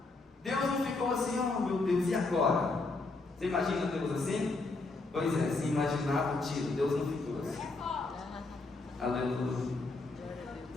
Deus não ficou assim: oh meu Deus, e agora? Você imagina Deus assim? Pois é, se imaginava o tiro, Deus não ficou assim. Aleluia.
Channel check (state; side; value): quieter; right; 3.5 dB